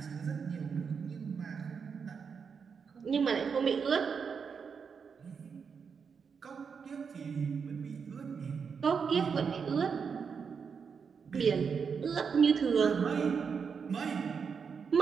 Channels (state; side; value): quieter; left; 6.1 dB